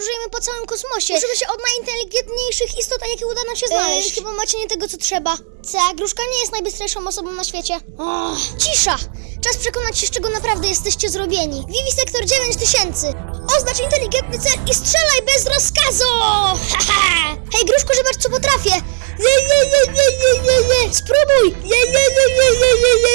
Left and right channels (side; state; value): left; silent; digital silence